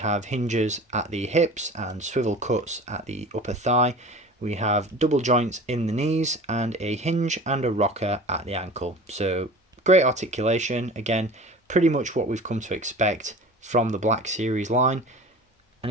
hinges at the hips and swivel cuts at the upper thigh. We have double joints in the knees and a hinge and a rocker at the ankle. So great articulation, again, pretty much what we've come to expect from the Black Series line. And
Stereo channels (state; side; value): normal; both; correlation 0.39